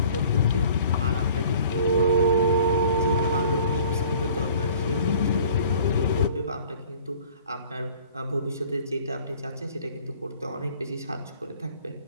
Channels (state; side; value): inverted; both; correlation -0.50